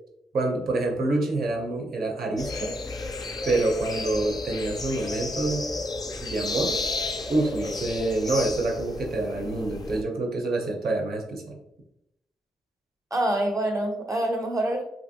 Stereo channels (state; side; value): normal; both; correlation 0.78